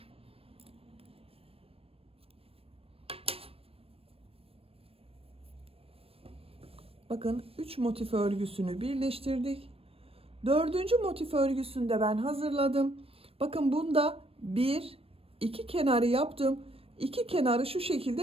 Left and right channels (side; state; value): left; late; 0.28 ms